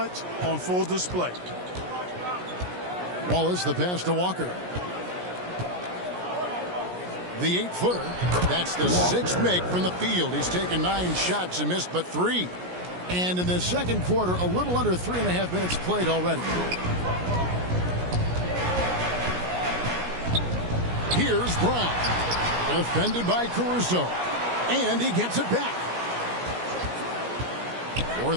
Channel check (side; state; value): left; late; 17 ms